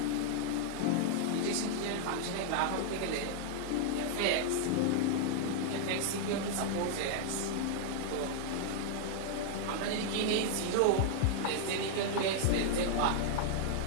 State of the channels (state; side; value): different; both; correlation -0.01